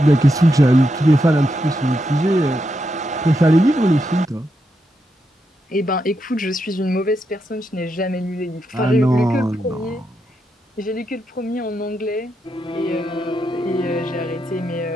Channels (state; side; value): normal; both; correlation 0.83